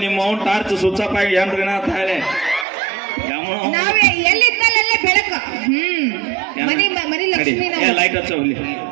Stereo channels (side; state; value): left; drops out; at 2.7 s